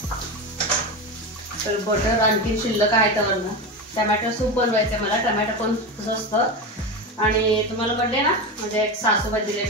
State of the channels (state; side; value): normal; both; correlation 0.20